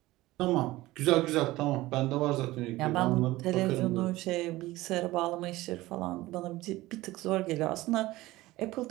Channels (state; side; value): quieter; left; 18.2 dB